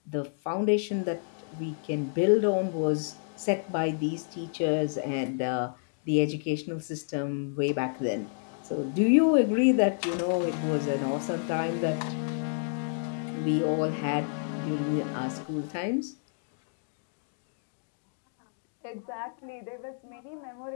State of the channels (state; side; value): silent; right; digital silence